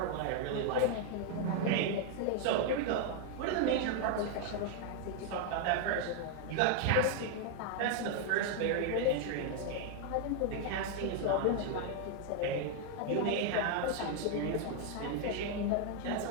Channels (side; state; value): both; different; correlation 0.00